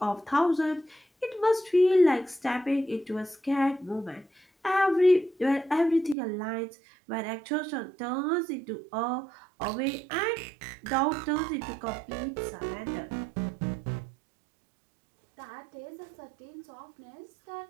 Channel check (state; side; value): drops out; left; at 6.2 s